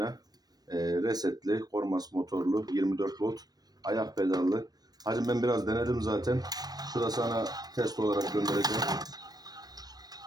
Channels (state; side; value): late; left; 0.19 ms